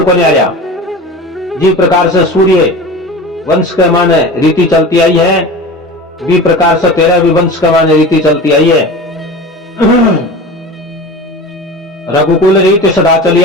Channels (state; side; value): normal; both; correlation 0.33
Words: को नहीं आया। जिस प्रकार से सूर्य वंश के माने रीति चलती आई है, भी प्रकार से तेरा भी वंश के माने रीति चलती आई है। रघुकुल रीति सदा चली